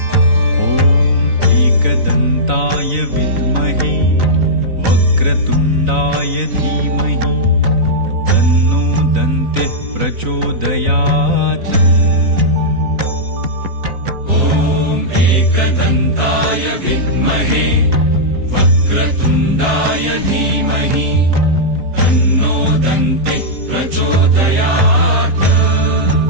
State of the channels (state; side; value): late; left; 3.9 ms